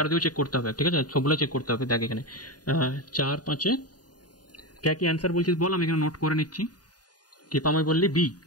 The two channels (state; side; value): late; right; 0.69 ms